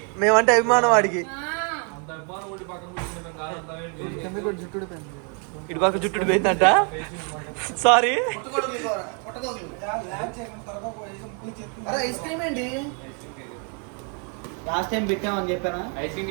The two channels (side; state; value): left; quieter; 38.9 dB